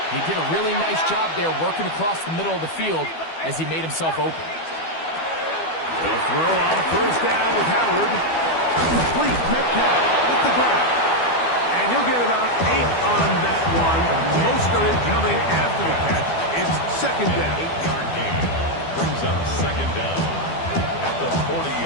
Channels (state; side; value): late; right; 12 ms